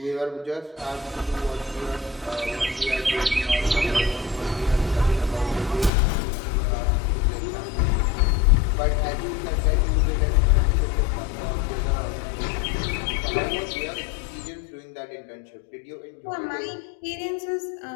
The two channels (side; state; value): right; drops out; at 5.9 s